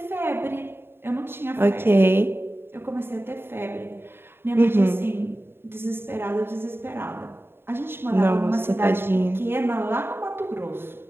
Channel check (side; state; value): left; late; 0.11 ms